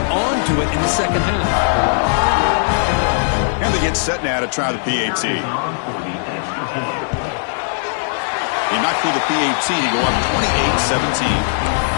onto it in the second half. And they get set now to try the PAT. They knock through the PAT to go up 28-17.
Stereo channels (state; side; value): silent; right; digital silence